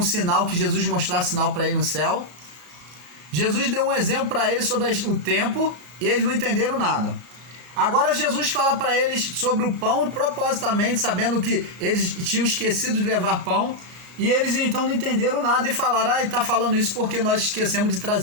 sinal, que Jesus mostrasse sinal para eles no céu. Jesus deu um exemplo para eles sobre o tempo e eles não entenderam nada. Agora Jesus fala para eles sobre o pão, propositamente, sabendo que eles tinham esquecido de levar pão, e eles então não entenderam nada e falaram: ele está falando isso porque nós esquecemos de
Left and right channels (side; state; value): left; late; 33 ms